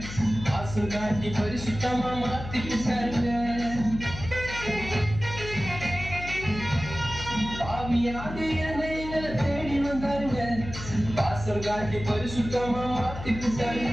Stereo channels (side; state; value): left; noise; hum, 10 dB below the sound